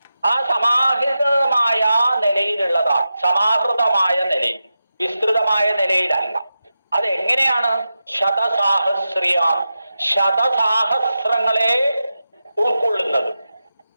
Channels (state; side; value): inverted; both; correlation -0.91